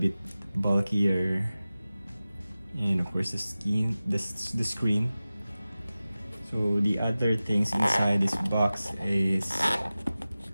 bulkier, and of course the screen. So the other things inside this box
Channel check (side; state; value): both; inverted; correlation -0.96